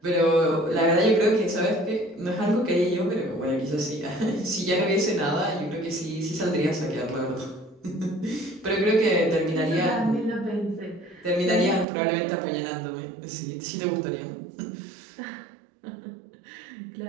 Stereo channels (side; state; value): left; drops out; at 11.9 s